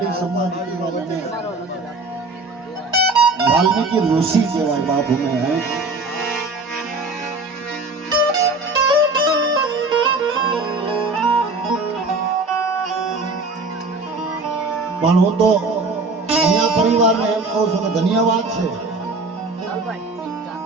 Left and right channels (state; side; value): quieter; left; 3.3 dB